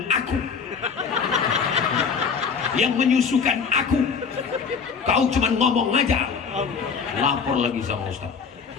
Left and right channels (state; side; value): quieter; right; 5.9 dB